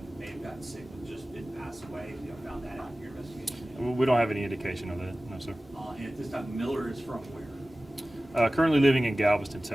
may have gotten sick and just didn't pass away? You found that out in your investigation? We don't have any indication of that, no sir. And at this time, Miller is from where? Currently living in Galveston,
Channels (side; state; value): both; normal; correlation 0.97